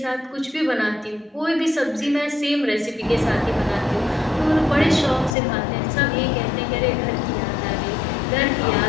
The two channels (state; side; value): drops out; right; at 5.4 s